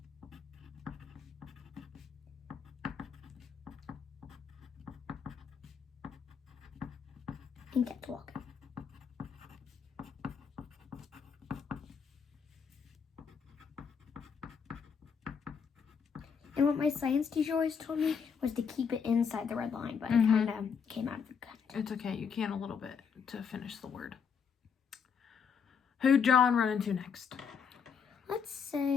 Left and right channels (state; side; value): quieter; right; 6.6 dB